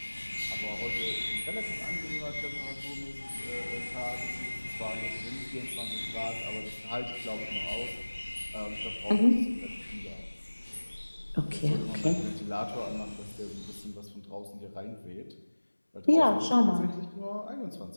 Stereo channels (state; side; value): inverted; both; correlation -1.00